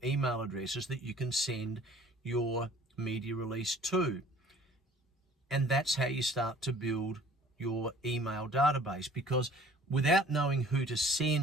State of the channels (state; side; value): normal; both; correlation 0.51